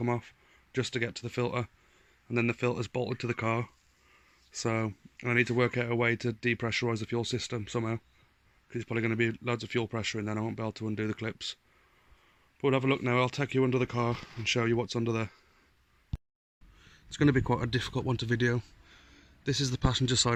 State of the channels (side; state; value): both; identical; correlation 1.00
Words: off just to get to the filter, and then the filter's bolted to the car. So I need to work out a way to depressurise the fuel system somehow, because it's probably going to be loads of fuel pressure and then I won't be able to undo the clips. But we'll have a look now. I'll take you under the car and show you what's under there. It's going to be quite a difficult one to video. This is the passenger